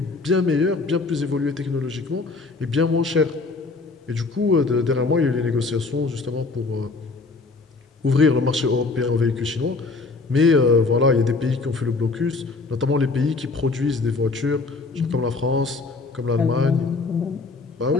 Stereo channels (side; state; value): right; quieter; 3.8 dB